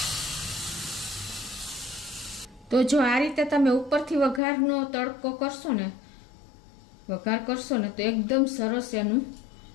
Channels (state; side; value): drops out; right; at 4.4 s